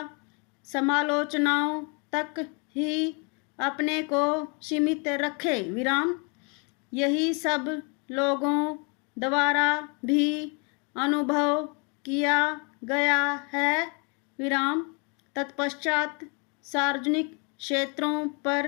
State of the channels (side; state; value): right; quieter; 34.4 dB